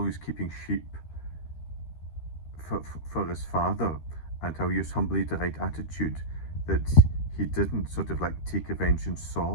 he was keeping sheep for his father, and how he was humbly the right attitude, that he didn't sort of like take revenge on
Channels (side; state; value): right; late; 13 ms